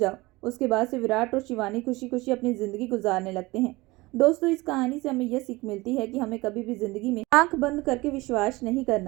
उसके बाद से विराट और शिवानी खुशी खुशी अपनी जिंदगी गुजारने लगते हैं। दोस्तों, इस कहानी से हमें यह सीख मिलती है कि हमें कभी भी जिंदगी में आंख बंद करके विश्वास नहीं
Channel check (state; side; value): quieter; left; 21.6 dB